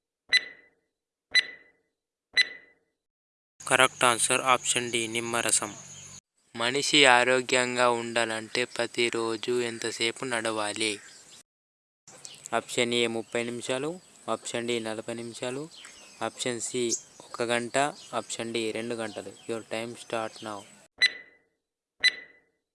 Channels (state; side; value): identical; both; correlation 1.00